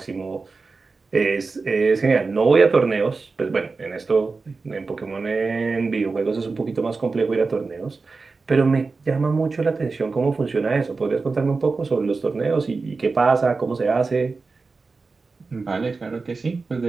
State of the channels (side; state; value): left; quieter; 4.2 dB